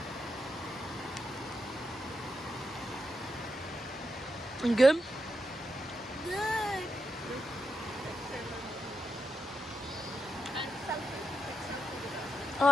You good? Good.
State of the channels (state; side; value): normal; both; correlation 0.85